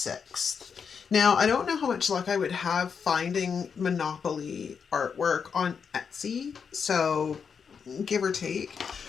Now, I don't know how much luck I would have finding Monopoly artwork on Etsy, so give or take.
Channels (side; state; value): right; quieter; 6.4 dB